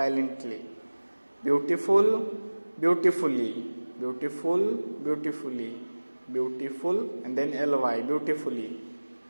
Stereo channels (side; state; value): both; inverted; correlation -1.00